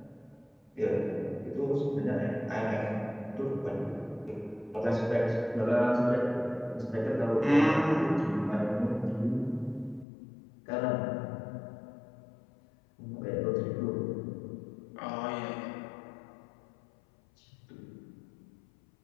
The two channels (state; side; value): drops out; right; at 10.1 s